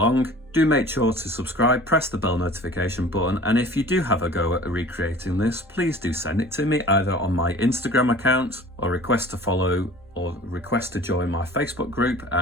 Do make sure to subscribe, press the bell notification button, and if you do have a go at recreating this, please do send it to me either on my Instagram account or request to follow or request to join my Facebook group,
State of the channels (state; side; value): normal; both; correlation 0.44